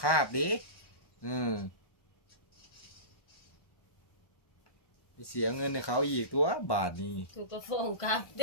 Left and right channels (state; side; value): late; right; 1.1 ms